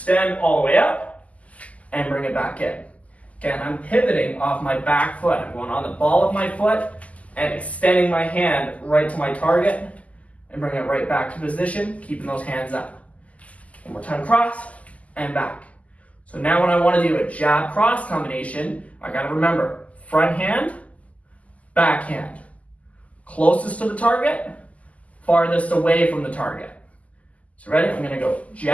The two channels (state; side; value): late; right; 0.070 ms